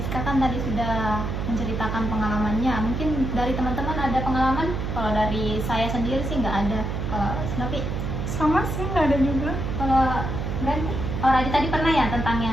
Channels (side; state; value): right; noise; hum, 3 dB below the sound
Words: kan tadi sudah menceritakan pengalamannya. Mungkin dari teman-teman ada pengalaman? Kalau dari saya sendiri sih nggak ada. Kalau Snovi? Sama sih, nggak ada juga. Kalau Brandy? Oh Radit tadi pernah ya tentang